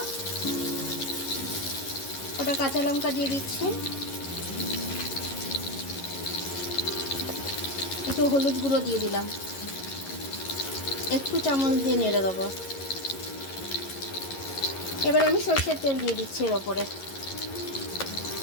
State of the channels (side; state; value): right; late; 11 ms